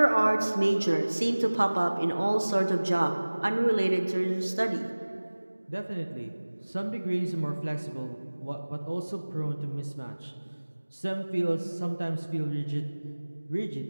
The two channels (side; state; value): both; inverted; correlation -1.00